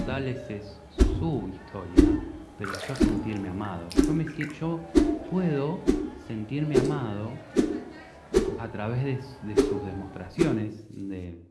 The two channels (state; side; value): identical; both; correlation 1.00